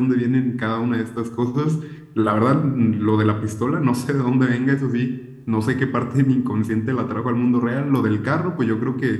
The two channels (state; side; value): identical; both; correlation 1.00